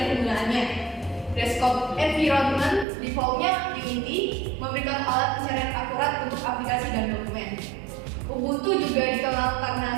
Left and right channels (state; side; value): drops out; left; at 2.9 s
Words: penggunaannya. Desktop environment defaultnya Unity memberikan alat pencarian akurat untuk aplikasi dan dokumen. Ubuntu juga dikenal